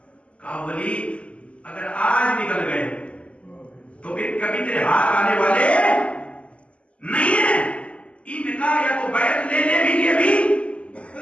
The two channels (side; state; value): right; late; 0.060 ms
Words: کہا ولید اگر آج نکل گئے تو پھر کبھی تیرے ہاتھ آنے والے نہیں ہیں، ان کا یا تو بیعت لے لے بھی یہ بھی